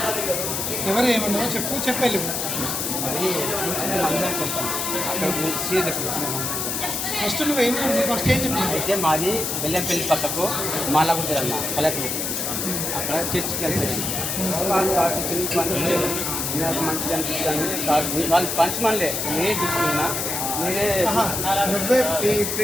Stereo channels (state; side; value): noise; left; hiss, 2 dB below the sound